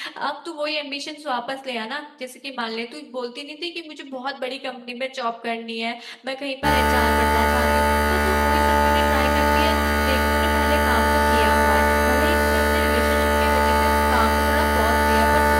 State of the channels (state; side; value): identical; both; correlation 1.00